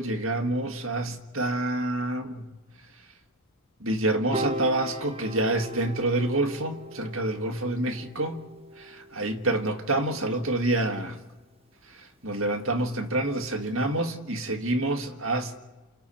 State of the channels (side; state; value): both; normal; correlation 0.14